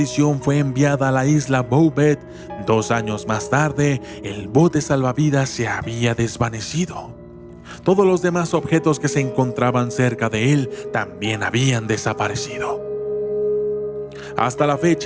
fue enviada a la isla Bouvet, 2 años más tarde, el bote salvavidas se había desvanecido. Todos los demás objetos que se encontraban cerca de él también habían desaparecido. Hasta la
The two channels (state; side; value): identical; both; correlation 1.00